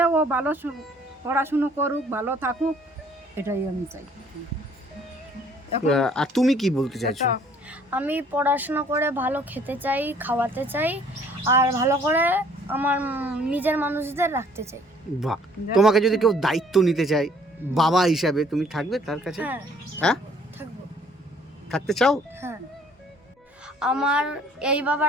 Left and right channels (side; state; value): both; normal; correlation 0.59